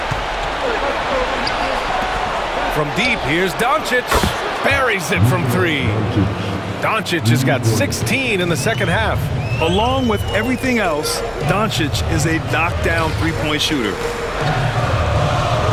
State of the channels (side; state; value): both; identical; correlation 1.00